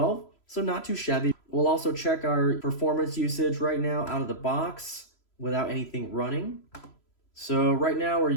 So not too shabby. We'll also check our performance usage right now out of the box without anything running. So right now we're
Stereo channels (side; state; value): right; late; 3.0 ms